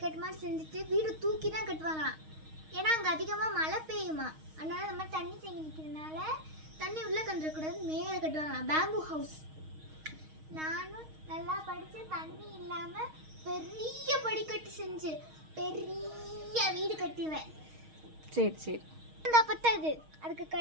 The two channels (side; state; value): left; late; 6.4 ms